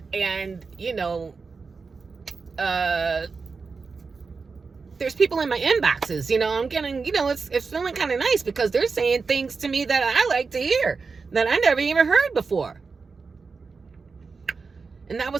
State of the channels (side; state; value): left; quieter; 4.7 dB